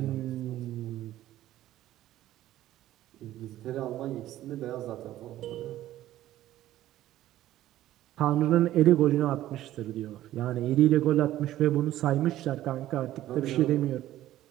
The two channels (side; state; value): left; quieter; 14.0 dB